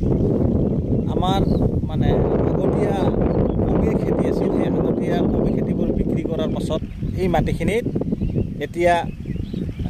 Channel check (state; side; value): identical; both; correlation 1.00